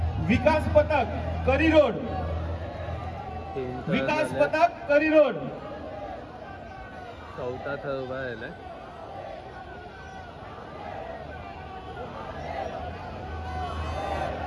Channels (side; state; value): both; identical; correlation 1.00